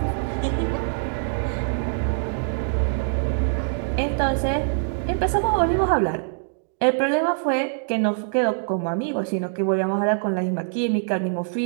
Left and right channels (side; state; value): left; silent; digital silence